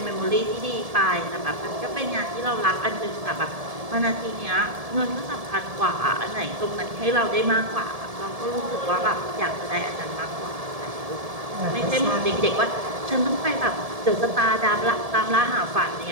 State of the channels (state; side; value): late; left; 1.7 ms